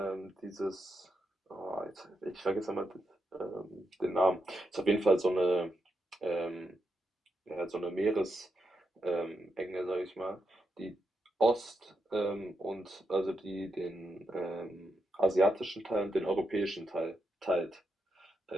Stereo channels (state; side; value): normal; both; correlation 0.84